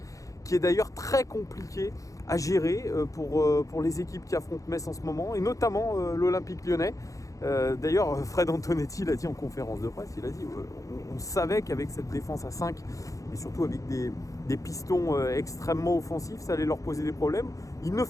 qui est d'ailleurs très compliquée à gérer pour les équipes qui affrontent Metz en ce moment, et notamment l'Olympique Lyonnais. D'ailleurs, Fred Antonetti l'a dit en conférence de presse, il a dit on savait qu'avec cette défense à 5 et surtout avec des pistons extrêmement offensifs, ça allait leur poser des problèmes. Il ne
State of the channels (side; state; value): right; late; 0.16 ms